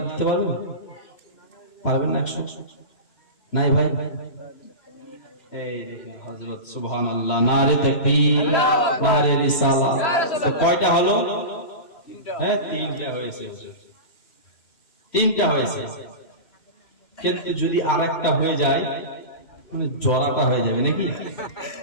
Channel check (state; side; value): late; right; 3.0 ms